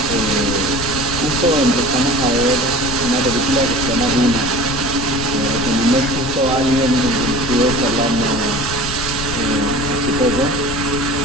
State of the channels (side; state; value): left; noise; rumble, 8 dB below the sound